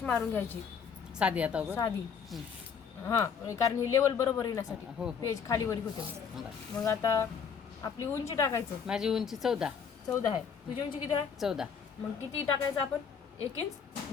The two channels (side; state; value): right; quieter; 6.7 dB